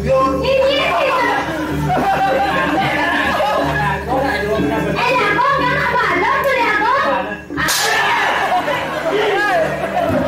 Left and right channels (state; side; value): identical; both; correlation 1.00